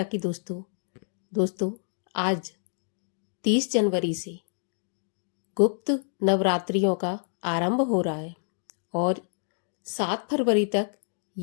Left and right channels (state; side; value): silent; right; digital silence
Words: की दोस्तों आज 30 जनवरी से गुप्त नवरात्रियों का आरंभ हो रहा है और 7 फरवरी तक